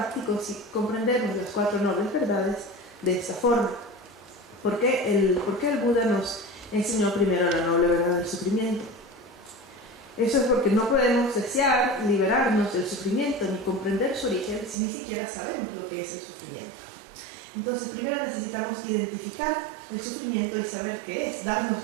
si comprendemos las 4 nobles verdades de esta forma. ¿Por qué el Buda nos enseñó primero la noble verdad del sufrimiento? Eso es porque no podemos desear liberarnos del sufrimiento ni comprender su origen si ni siquiera sabemos lo que es el sufrimiento. Entonces, primero necesitamos identificar el sufrimiento y saber qué es, darnos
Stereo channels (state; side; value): drops out; left; at 14.8 s